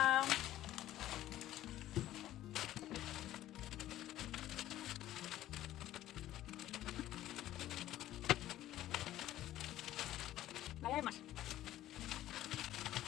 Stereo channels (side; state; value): right; quieter; 13.8 dB